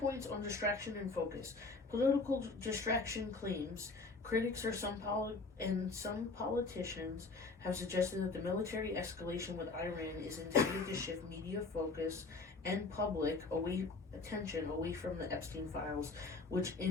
on distraction and focus. Political distraction claims. Critics or some politicians have suggested that the military escalation with Iran is intended to shift media focus and public attention away from the Epstein files, which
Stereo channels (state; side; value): quieter; right; 3.8 dB